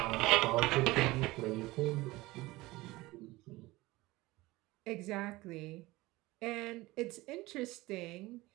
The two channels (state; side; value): quieter; left; 20.0 dB